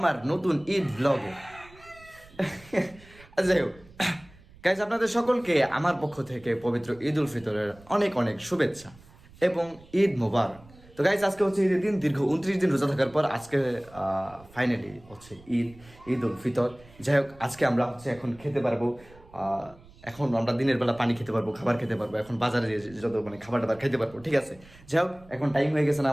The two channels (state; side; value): noise; right; rumble, 24 dB below the sound